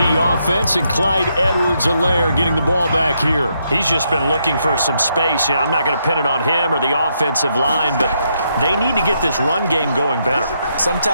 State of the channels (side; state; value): both; inverted; correlation -0.78